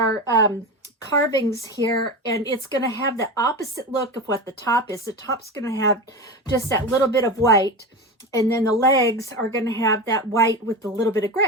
carvings here, and it's going to have the opposite look of what the top is. The top's going to have just that little bit of white, and then the legs are going to have that white with a little bit of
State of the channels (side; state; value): both; normal; correlation 0.24